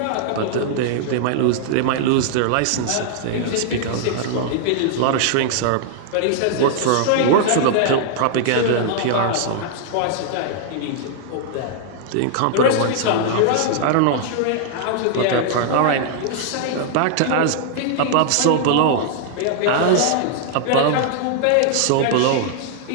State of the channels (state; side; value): different; both; correlation -0.01